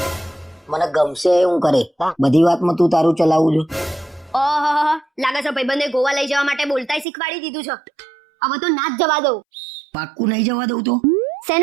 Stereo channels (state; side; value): drops out; left; at 7.1 s